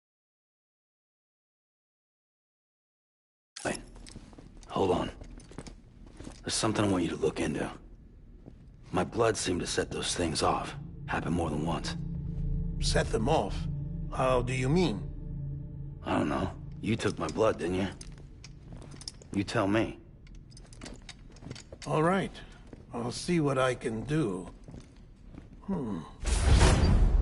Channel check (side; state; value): both; identical; correlation 1.00